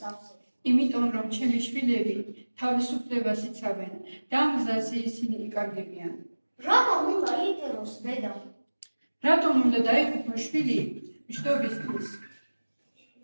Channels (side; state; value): both; inverted; correlation -1.00